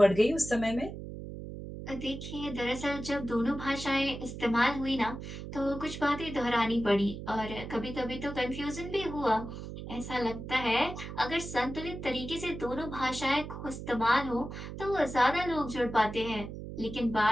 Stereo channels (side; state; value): right; noise; hum, 9 dB below the sound